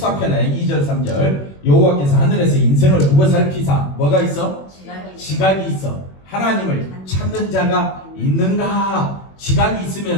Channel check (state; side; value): late; right; 21 ms